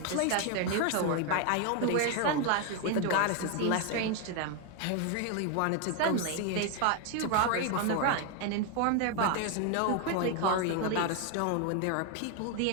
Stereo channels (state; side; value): different; both; correlation 0.01